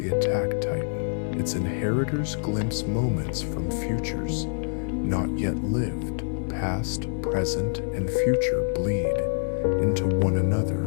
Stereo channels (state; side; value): silent; right; digital silence